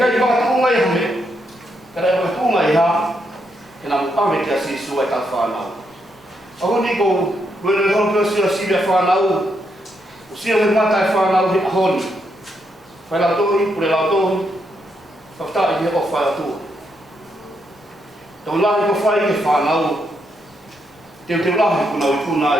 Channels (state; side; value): normal; both; correlation 0.79